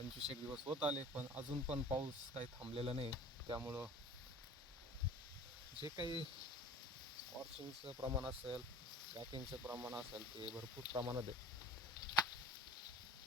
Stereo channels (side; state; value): both; normal; correlation 0.43